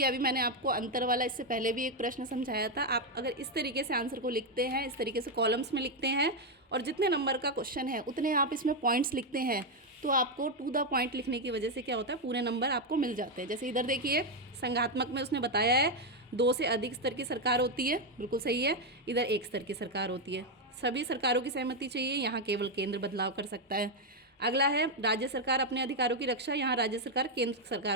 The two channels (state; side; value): normal; both; correlation 0.04